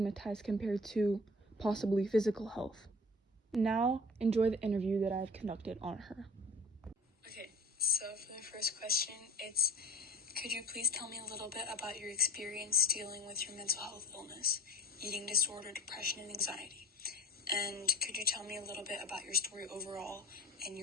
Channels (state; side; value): normal; both; correlation 0.41